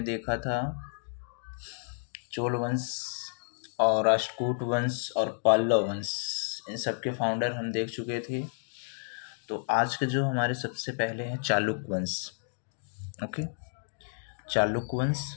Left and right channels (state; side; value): silent; right; digital silence